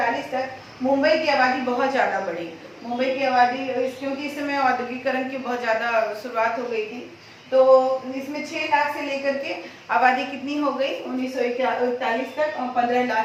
तक मुंबई की आबादी बहुत ज़्यादा बढ़ी। मुंबई की आबादी क्योंकि इस समय औद्योगिकरण की बहुत ज़्यादा शुरुआत हो गई थी, तो इसमें 6 लाख से लेकर के आबादी कितनी हो गई 1941 तक 15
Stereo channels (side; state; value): both; identical; correlation 1.00